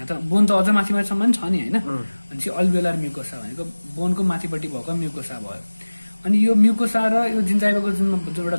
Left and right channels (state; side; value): inverted; both; correlation -1.00